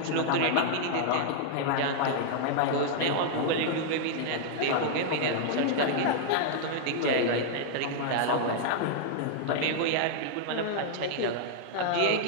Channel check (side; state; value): both; different; correlation -0.01